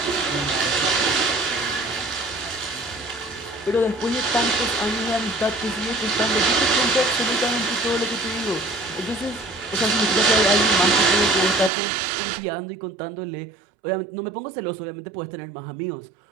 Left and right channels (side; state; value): left; drops out; at 11.7 s